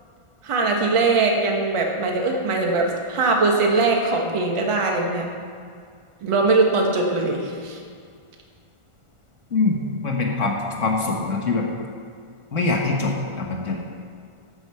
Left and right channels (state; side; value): late; left; 1.4 ms